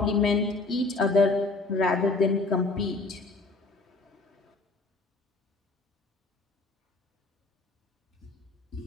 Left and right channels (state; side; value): quieter; right; 3.4 dB